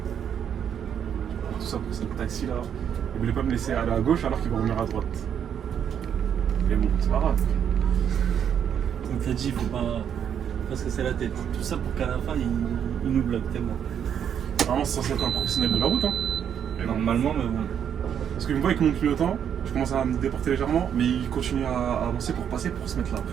Tout ça pour ce taxi là. Il voulait pas me laisser aller à gauche alors qu'il va revenir à droite. Mais bon, c'est pas grave. Donc t'as dit, il faut pas se casser la tête. Tout ça pour qu'à la fin, il nous bloque tellement. Normalement, c'est censé être un professionnel de la route, hein. Normalement, mais bon. Parce qu'il me voit avec mon clignotant, je commence à me déporter légèrement, mais il continue à avancer pour passer pour se mettre là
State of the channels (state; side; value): quieter; left; 8.6 dB